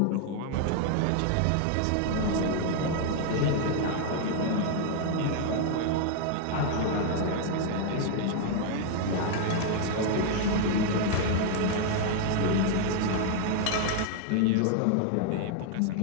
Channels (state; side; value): different; both; correlation 0.00